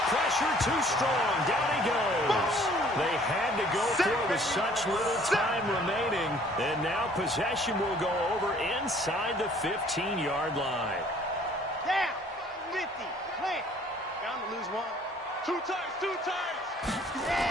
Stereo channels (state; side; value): normal; both; correlation 0.57